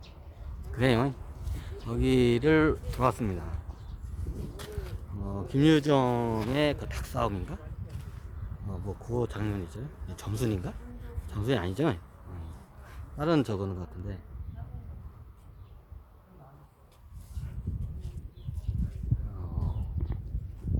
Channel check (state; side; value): identical; both; correlation 1.00